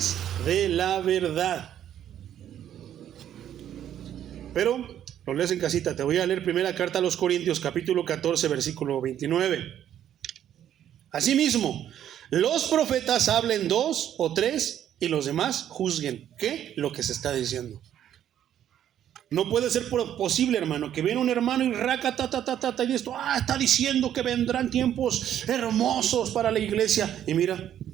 de la verdad. Pero lo lees en casita. Te voy a leer primera carta a los Corintios, capítulo 14, versículo 29. Asimismo, los profetas hablen 2 o 3 y los demás juzguen. ¿Qué? Lo que se está diciendo. No puede ser posible, hermano, que viene un hermano y y esto, está diciendo que vendrán tiempos hermosos para la iglesia. Y mira,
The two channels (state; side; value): quieter; left; 10.6 dB